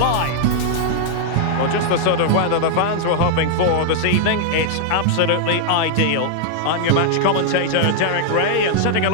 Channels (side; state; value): both; different; correlation 0.00